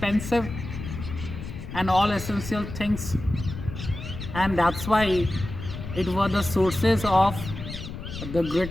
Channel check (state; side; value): noise; left; rumble, 9 dB below the sound